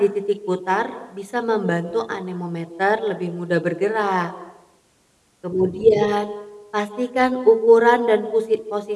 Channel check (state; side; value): identical; both; correlation 1.00